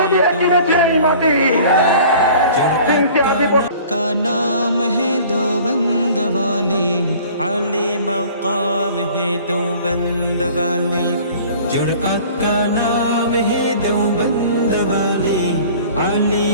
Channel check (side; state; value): both; inverted; correlation -0.47